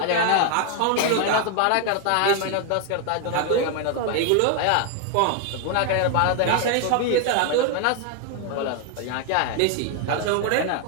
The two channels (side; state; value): both; different; correlation 0.00